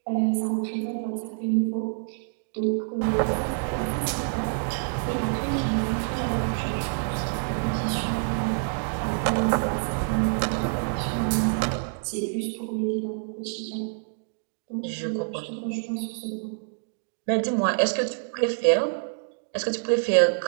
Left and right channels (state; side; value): silent; left; digital silence